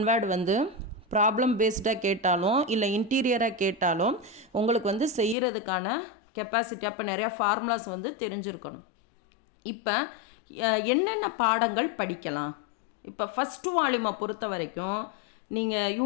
வேர்டு வந்து ப்ராப்ளம் பேஸ்டாக கேட்டாலும் இல்லை இன்டீரியராக கேட்டாலும் உங்களுக்கு வந்து செய்கிறதுக்கான கெப்பாசிட்டி, அப்போ நிறையா ஃபார்முலாஸ் வந்து தெரிஞ்சிருக்கணும். இப்போ என்னென்ன பாடங்கள் படிக்கலாம்? இப்போ ஃபஸ்ட்டு வால்யூமை பொறுத்த வரைக்கும் நீங்கள்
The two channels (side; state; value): right; drops out; at 5.4 s